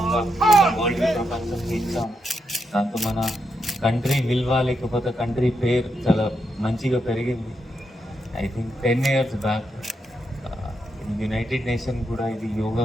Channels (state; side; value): normal; both; correlation 0.83